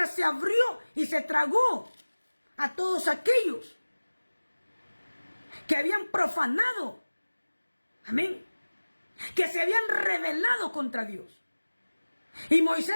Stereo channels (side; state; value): both; inverted; correlation -1.00